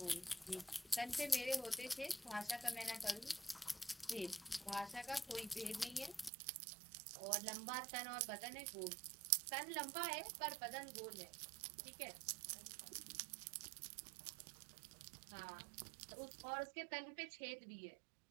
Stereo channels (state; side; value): drops out; left; at 6.3 s